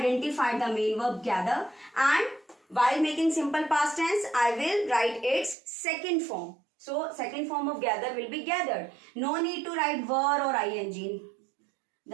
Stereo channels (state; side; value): drops out; left; at 5.6 s